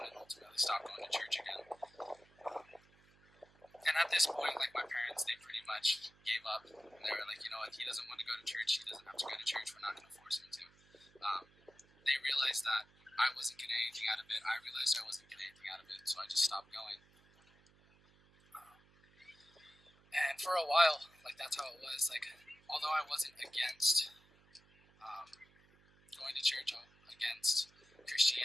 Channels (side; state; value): right; noise; hum, 29 dB below the sound